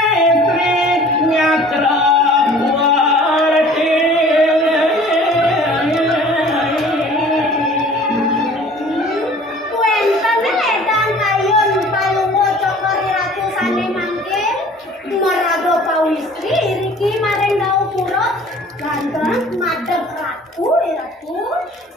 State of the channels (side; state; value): both; normal; correlation 0.49